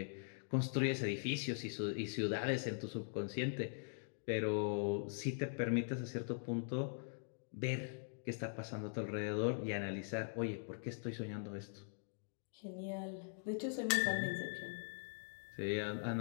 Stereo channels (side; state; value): right; silent; digital silence